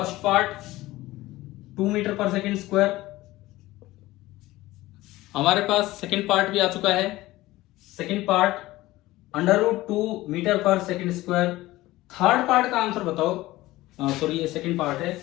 पार्ट 2 मीटर पर सेकंड स्क्वायर। हमारे पास सेकंड पार्ट भी आ चुका है, second part under root 2 metre पर सेकंड स्क्वायर। थर्ड पार्ट का आंसर बताओ, सॉरी ये सेकंड पार्ट है।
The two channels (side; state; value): right; quieter; 17.8 dB